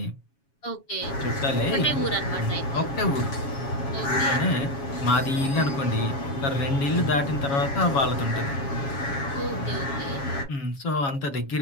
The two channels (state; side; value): late; right; 7.2 ms